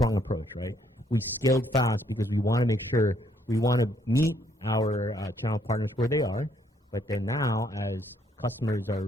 approach, right? We scaled fast because we want to make sure we want to meet our channel partners where they are. But then now, as customers are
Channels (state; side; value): normal; both; correlation 0.69